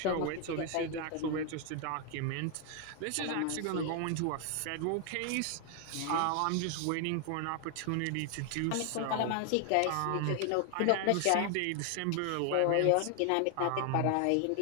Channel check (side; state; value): both; different; correlation 0.00